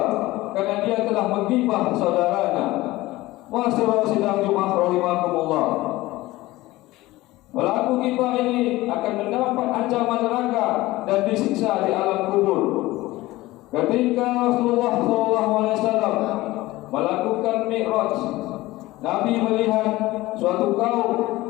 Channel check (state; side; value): quieter; right; 18.5 dB